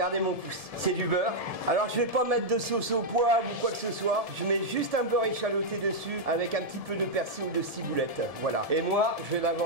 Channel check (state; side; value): late; left; 1.7 ms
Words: mon pouce, c'est du beurre. Alors, je vais pas mettre de sauce au poivre ou quoi que ce soit. Je mets juste un beurre échaloté dessus avec un petit peu de persil ou de ciboulette. Voilà. Et moi, je vais la